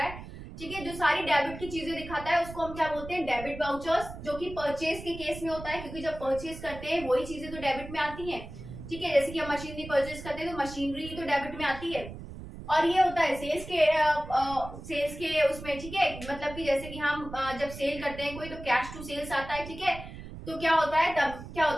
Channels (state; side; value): noise; right; rumble, 12 dB below the sound